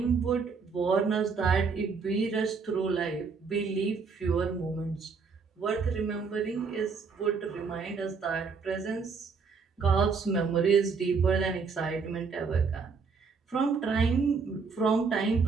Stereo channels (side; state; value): left; quieter; 5.1 dB